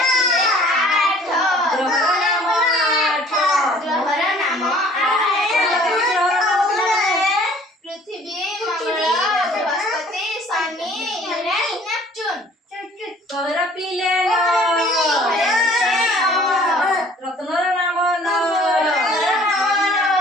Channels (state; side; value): normal; both; correlation 0.53